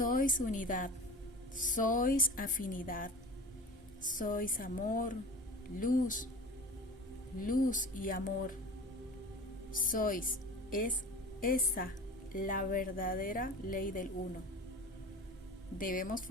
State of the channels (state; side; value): normal; both; correlation 0.37